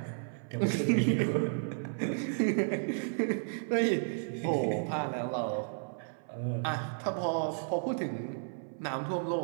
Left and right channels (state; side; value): silent; left; 56 dB below the other